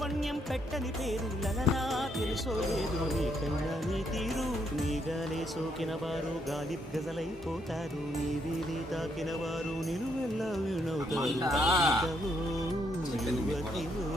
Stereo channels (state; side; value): normal; both; correlation 0.74